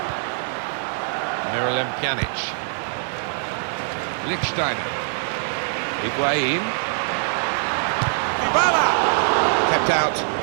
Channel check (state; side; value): silent; left; digital silence